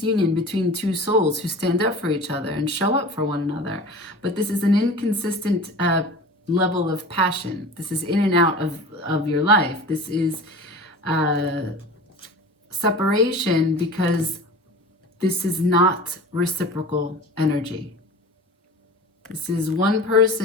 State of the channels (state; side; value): normal; both; correlation 0.37